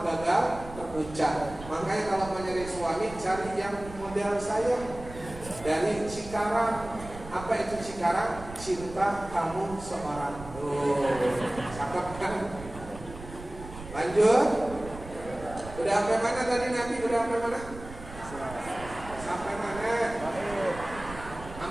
gagal terucap. Makanya kalau mau nyari suami cari yang model saya dari Cikarang. Apa itu Cikarang? Cinta kamu seorang. Cakep kan? Lanjut. Udah sampai mana tadi Nabi? Udah sampai mana? Sampai mana?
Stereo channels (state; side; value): noise; right; rumble, 14 dB below the sound